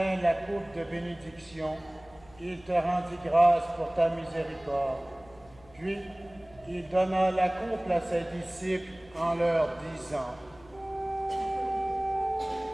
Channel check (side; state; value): left; noise; hum, 26 dB below the sound